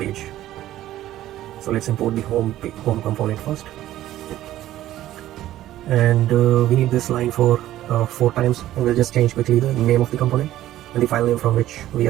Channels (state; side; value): quieter; left; 13.9 dB